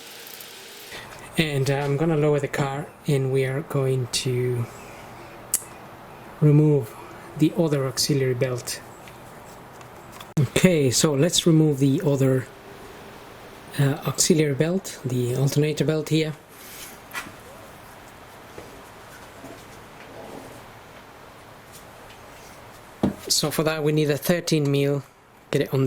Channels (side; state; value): both; identical; correlation 1.00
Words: And I'm gonna lower the car and we are going to remove the other auxiliary belt. Okay, so let's remove the other auxiliary belt, the alternator belt here. So for that we need a 13mm, get it on